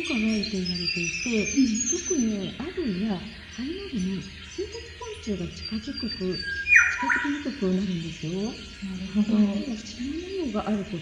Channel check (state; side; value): identical; both; correlation 1.00